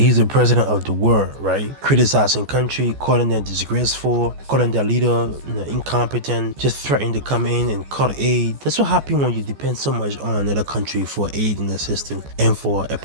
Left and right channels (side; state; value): left; late; 14 ms